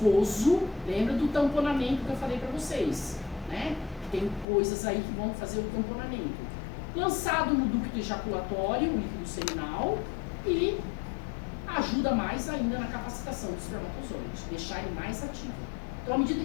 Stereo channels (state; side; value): drops out; right; at 4.5 s